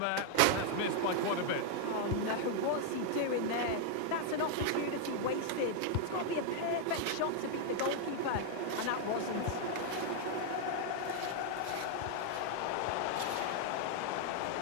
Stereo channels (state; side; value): different; both; correlation 0.00